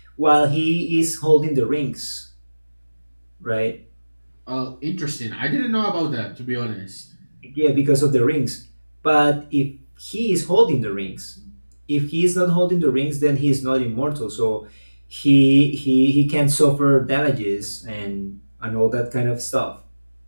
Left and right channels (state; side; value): inverted; both; correlation -1.00